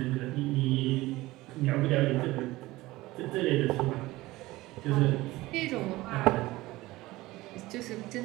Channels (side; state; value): left; quieter; 18.9 dB